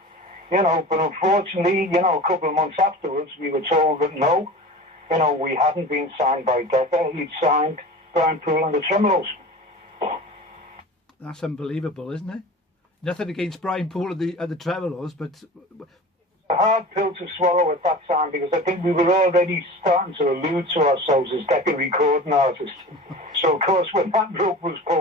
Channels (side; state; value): both; normal; correlation 0.36